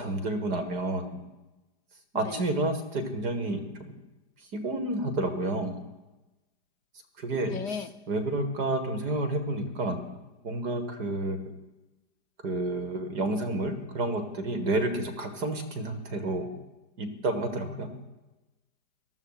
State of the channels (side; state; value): left; late; 4.9 ms